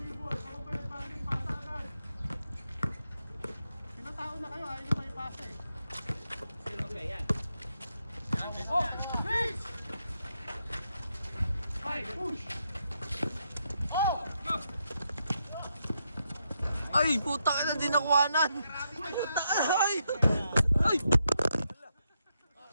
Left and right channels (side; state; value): both; inverted; correlation -0.81